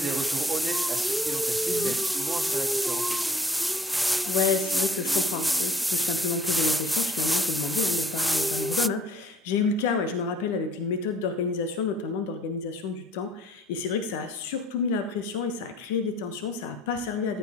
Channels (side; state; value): both; normal; correlation 0.56